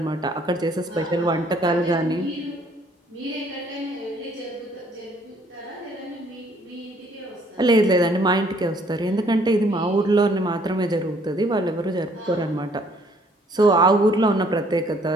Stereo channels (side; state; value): both; normal; correlation 0.62